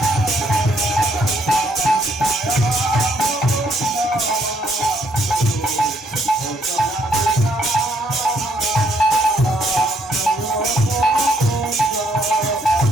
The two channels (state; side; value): normal; both; correlation 0.70